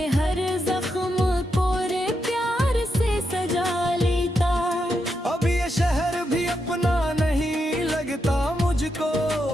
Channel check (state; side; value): normal; both; correlation 0.84